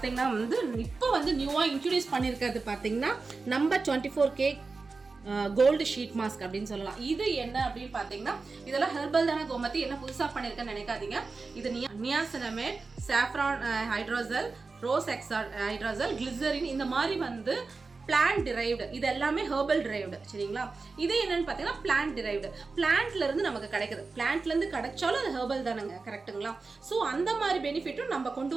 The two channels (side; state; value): left; quieter; 4.1 dB